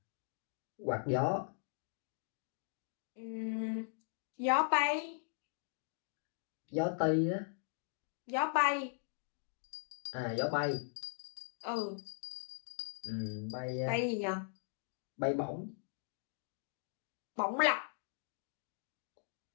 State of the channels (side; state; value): right; silent; digital silence